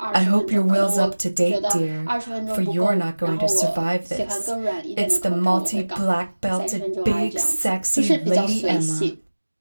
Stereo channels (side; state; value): both; inverted; correlation -1.00